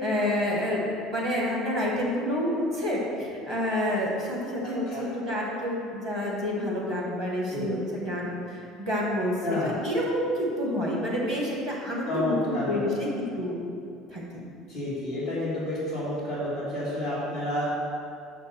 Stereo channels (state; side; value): normal; both; correlation 0.44